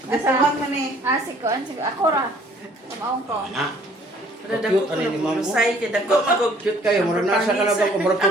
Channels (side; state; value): both; normal; correlation 0.57